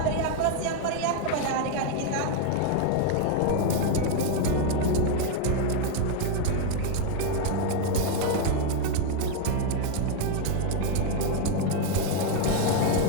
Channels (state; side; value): different; both; correlation 0.01